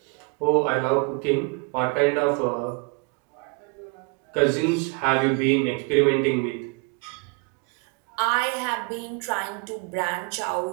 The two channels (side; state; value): left; quieter; 31.5 dB